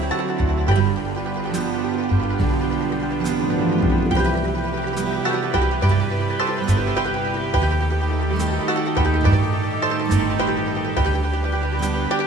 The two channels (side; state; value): both; normal; correlation 0.60